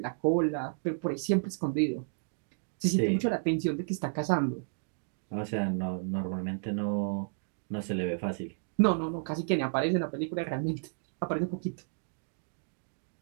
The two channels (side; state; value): left; silent; digital silence